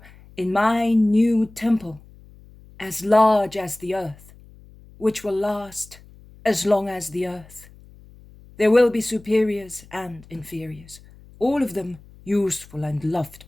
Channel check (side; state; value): left; noise; hum, 23 dB below the sound